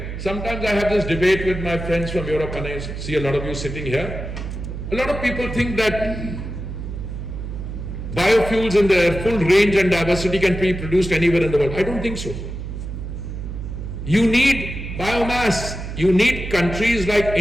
sometimes I have this debate with my friends from Europe, and I see a lot of you sitting here. A lot of people think that biofuels in their full range and diversity can be produced anywhere in the world. I don't think so. You need biomass. You need countries like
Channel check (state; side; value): noise; right; hum, 7 dB below the sound